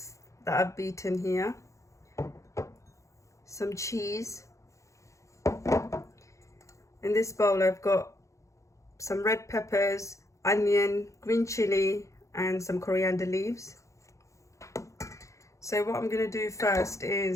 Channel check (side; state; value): right; late; 0.15 ms